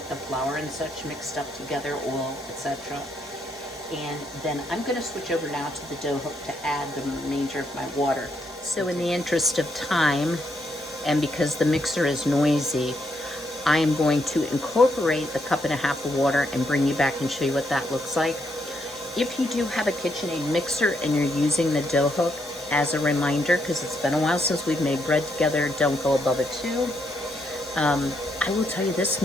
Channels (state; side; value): normal; both; correlation 0.76